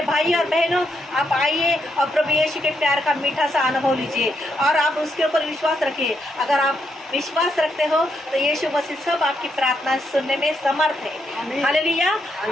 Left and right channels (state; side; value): normal; both; correlation 0.79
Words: भाई और बहनों, आप आइए और प्रभु यीशु के प्यार का मीठा सा अनुभव लीजिए और आप उसके ऊपर विश्वास रखिए। अगर आप विश्वास रखते हो तो यीशु मसीह सब आपकी प्रार्थना सुनने में समर्थ है। Hallelujah,